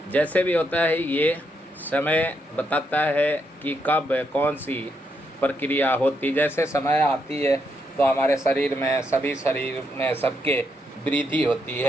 जैसे भी होता है, ये समय बताता है कि कब कौन सी प्रक्रिया होती। जैसे समय आती है तो हमारे शरीर में सबके वृद्धि होती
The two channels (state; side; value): normal; both; correlation 0.79